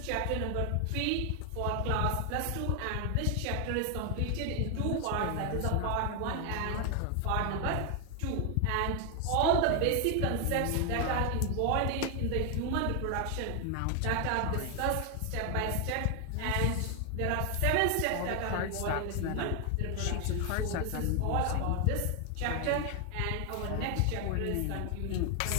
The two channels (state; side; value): different; both; correlation 0.01